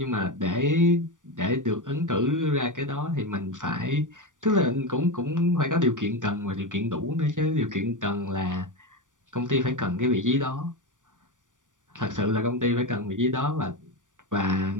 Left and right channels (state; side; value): late; left; 0.87 ms